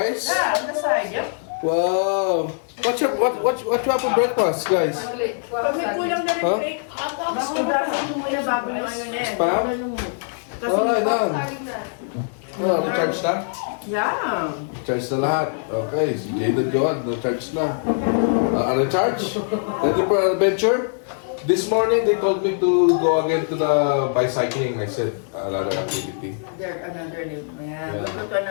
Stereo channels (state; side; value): silent; right; digital silence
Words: Yeah, on the side, yep. Wow. What you have for breakfast, guys? Pag may kulang na rin, Rick, masudasan mo muna bago yung ano na eh. Spam? Alright, done. Oh, na-charge na? Yeah. Charge na lahat. Okay, si Jada Joad, na-charge na. Ano-charge? Ready for adventure? This morning, they told me to go again to the bicycling. I said, another activity. There, another new. Yeah. Yeah. We'll go to